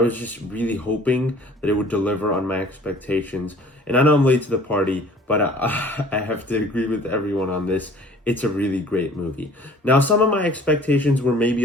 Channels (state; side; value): normal; both; correlation 0.51